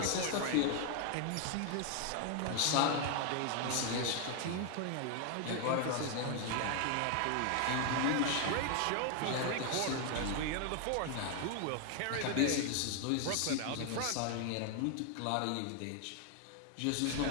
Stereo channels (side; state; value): both; different; correlation 0.00